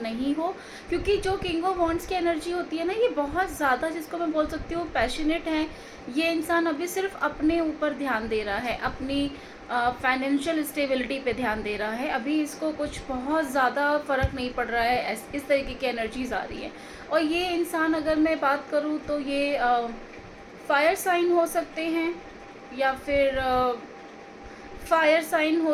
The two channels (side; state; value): both; identical; correlation 1.00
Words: हो, क्योंकि जो किंग ऑफ वॉन्ड्स की एनर्जी होती है ना, ये बहुत ज़्यादा, जिसको मैं बोल सकती हूँ पैशनेट है। ये इंसान अभी सिर्फ अपने ऊपर ध्यान दे रहा है, अपनी फाइनेंशियल स्टेबिलिटी पे ध्यान दे रहा है। अभी इसको कुछ बहुत ज़्यादा फ़र्क नहीं पड़ रहा है, इस तरीके की एनर्जीज आ रही है। और ये इंसान, अगर मैं बात करूँ तो ये फायर साइन हो सकते हैं या फिर फायर साइन